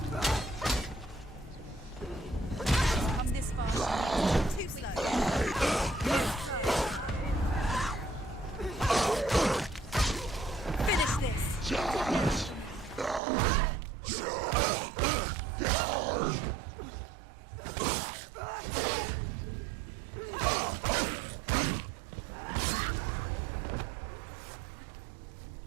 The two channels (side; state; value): left; drops out; at 13.2 s